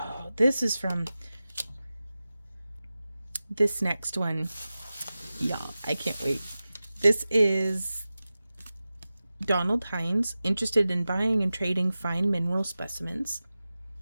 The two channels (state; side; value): inverted; both; correlation -0.95